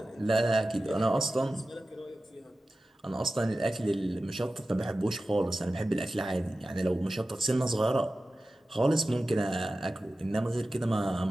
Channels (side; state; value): both; normal; correlation 0.95